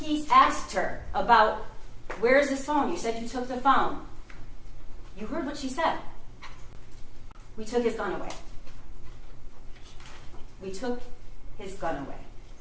asked her about, "Where's this phone? You said you took the phone." You heard what she said. We took his gun away. We took his gun away.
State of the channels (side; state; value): both; identical; correlation 1.00